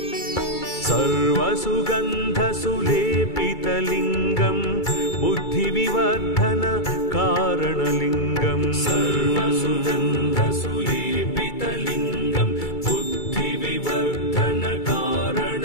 सर्वसुगन्धसुलेपितलिङ्गं बुद्धिविवर्धनकारणलिङ्गं सर्वसुगन्धसुलेपितलिङ्गं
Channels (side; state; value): right; late; 2.3 ms